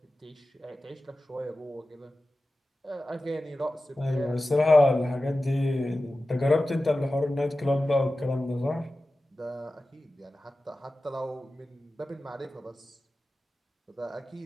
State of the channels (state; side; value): normal; both; correlation 0.95